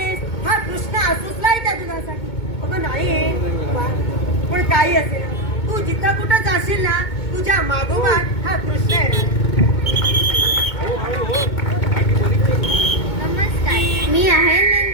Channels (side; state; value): right; late; 2.2 ms